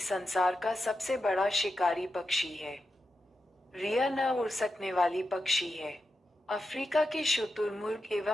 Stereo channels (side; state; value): both; normal; correlation 0.89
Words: का सबसे बड़ा शिकारी पक्षी है। रिया न उड़ सकने वाली पक्षी है। अफ्रीका के शुतुरमुर्ग